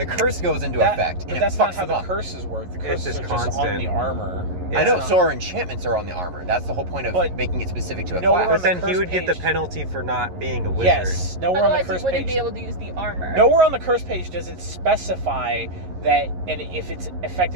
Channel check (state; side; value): late; left; 11 ms